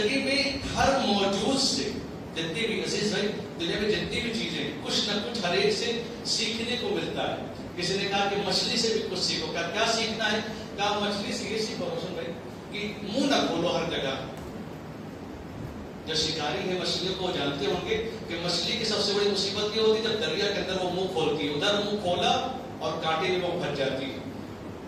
میں ہر موجود سے جتنی بھی عزیز بھائی دنیا میں جتنی بھی چیزیں کچھ نہ کچھ ہر ایک سے سیکھنے کو ملتا ہے. کسی نے کہا کہ مچھلی سے بھی کچھ سیکھو. کیا سیکھنا ہے؟ کہا مچھلی سے یہ سیکھو روشن بھائی کہ منہ نہ کھولو ہر جگہ. جو شکاری ہے مچھلیوں کو جانتے ہوں گے کہ مچھلی کی سب سے بڑی مصیبت یہ ہوتی ہے جب دریا کے اندر وہ منہ کھولتی ہے، ادھر منہ کھولا اور کانٹے میں وہ پھنس جاتی ہے.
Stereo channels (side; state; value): both; identical; correlation 1.00